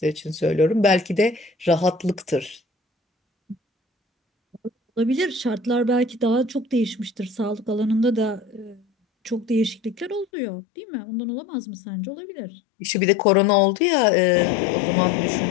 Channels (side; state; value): right; drops out; at 10.2 s